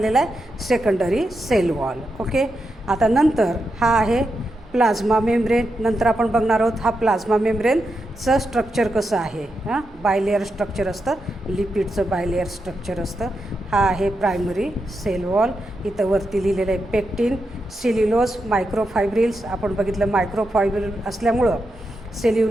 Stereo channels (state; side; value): normal; both; correlation 0.86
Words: आहे, सेकंडरी सेल वॉल. ओके. आता नंतर हा आहे प्लाझ्मा मेम्ब्रेन. नंतर आपण बघणार आहोत हा प्लाझ्मा मेम्ब्रेनचं स्ट्रक्चर कसं आहे. बायलेअर स्ट्रक्चर असतं, लिपिडचं बायलेअर स्ट्रक्चर असतं. हा आहे प्रायमरी सेल वॉल. इथं वरती लिहिलेलं आहे पेक्टिन, सेल्युलोज, मायक्रोफायब्रिल्स. आपण बघितलं मायक्रोफायब्रिल असल्यामुळं,